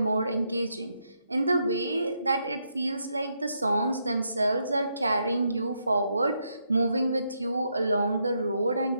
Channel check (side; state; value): both; inverted; correlation -0.79